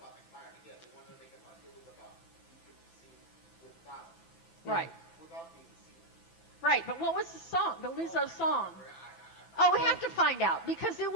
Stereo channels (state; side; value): late; right; 6.0 ms